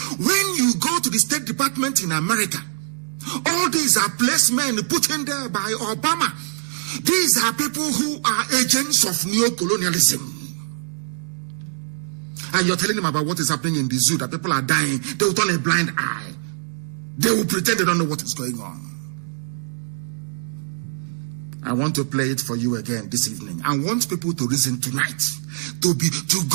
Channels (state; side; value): silent; left; 59 dB below the other